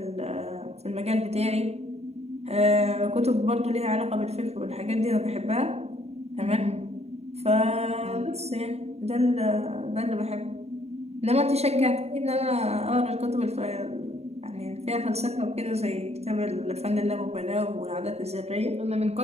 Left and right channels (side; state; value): left; late; 0.31 ms